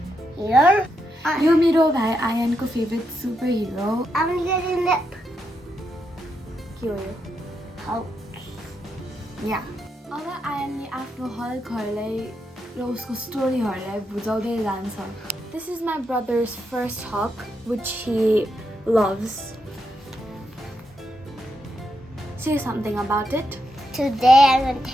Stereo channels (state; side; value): normal; both; correlation 0.82